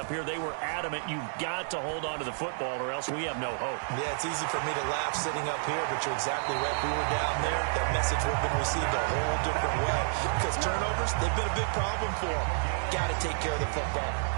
here. They were adamant, you've got to hold on to the football or else we have no hope. Yeah, it's easy for me to laugh sitting up here, but you're exactly right. We were down there. That message would have been received a whole different way. Because turnovers, they've been a big problem for them. Got to take care of the football.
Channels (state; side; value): silent; left; 58 dB below the other